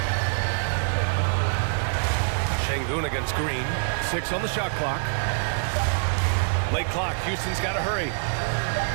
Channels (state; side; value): silent; left; 59 dB below the other